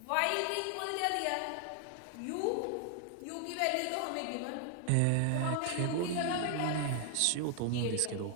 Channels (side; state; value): both; different; correlation 0.00